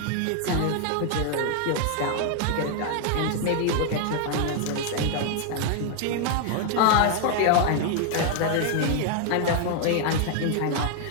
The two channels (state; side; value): different; both; correlation 0.00